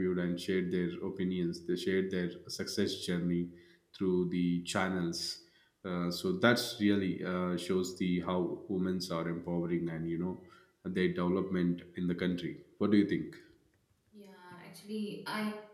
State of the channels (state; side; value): identical; both; correlation 1.00